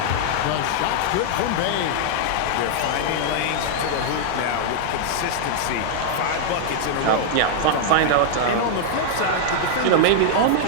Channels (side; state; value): both; different; correlation -0.01